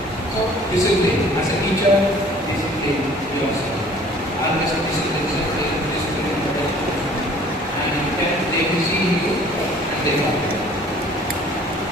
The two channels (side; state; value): both; normal; correlation 0.52